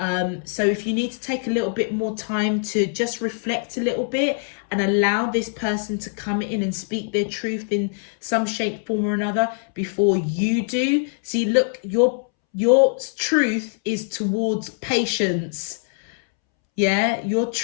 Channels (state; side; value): silent; right; 64 dB below the other